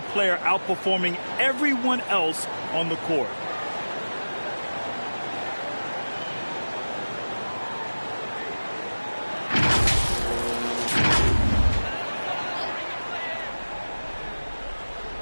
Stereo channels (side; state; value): both; inverted; correlation -1.00